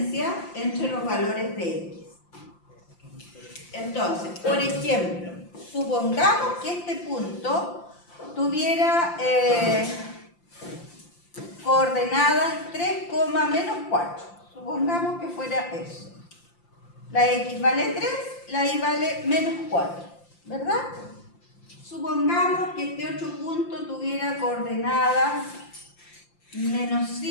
entre los valores de X. Entonces, por ejemplo, supongamos que este punto tuviera coordenadas 3, menos 4. Supongamos que fuera eso. La X vale 3, la Y vale menos 4, ¿verdad? Supongamos que este otro punto tuviera coordenadas menos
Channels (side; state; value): right; late; 5.8 ms